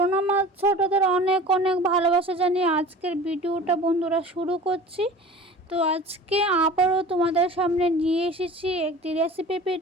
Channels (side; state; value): both; normal; correlation 0.40